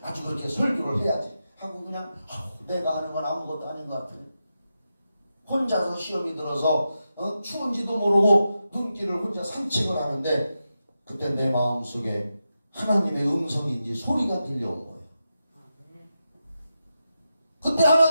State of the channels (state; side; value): inverted; both; correlation -0.89